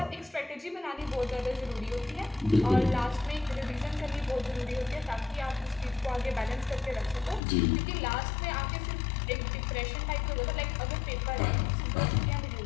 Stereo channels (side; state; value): right; drops out; at 7.4 s